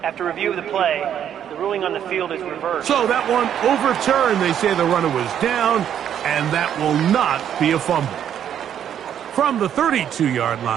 After review of the play, the ruling on the field is reversed. So that one overturned. They say the runner was down, and that will not be a fumble. From the 32-yard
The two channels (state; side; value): quieter; left; 9.6 dB